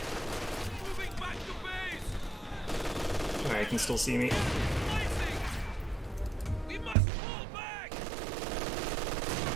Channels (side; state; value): left; drops out; at 7.0 s